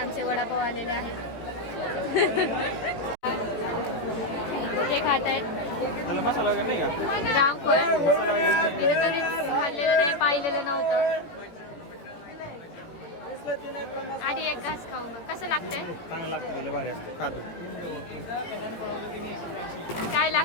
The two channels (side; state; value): right; late; 18 ms